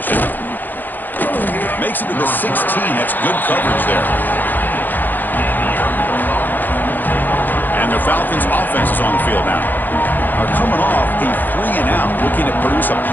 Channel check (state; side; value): late; right; 0.087 ms